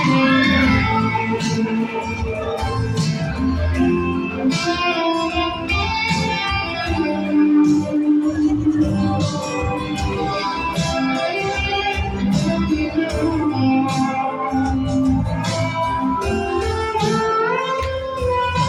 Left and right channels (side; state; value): both; identical; correlation 1.00